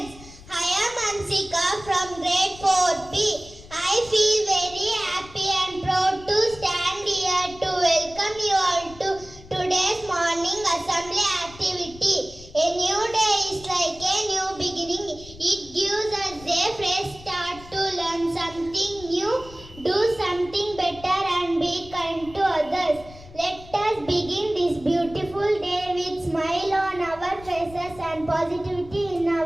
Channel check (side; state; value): left; noise; rumble, 19 dB below the sound